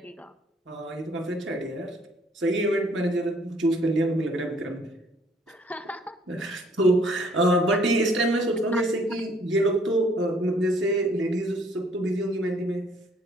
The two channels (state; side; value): normal; both; correlation 0.61